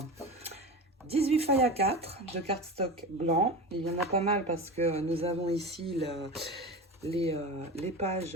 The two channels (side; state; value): both; normal; correlation 0.28